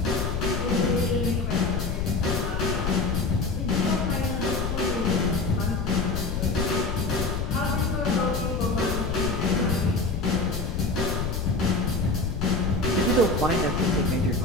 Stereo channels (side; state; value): left; noise; rumble, 2 dB below the sound